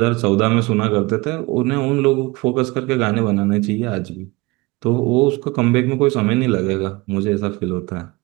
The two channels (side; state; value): left; quieter; 23.4 dB